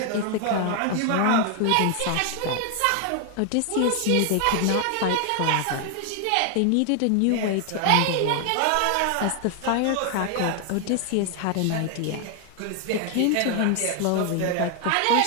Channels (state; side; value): different; both; correlation 0.00